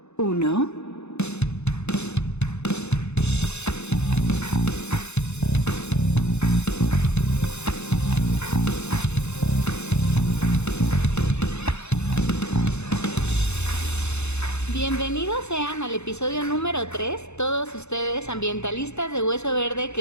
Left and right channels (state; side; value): late; right; 0.81 ms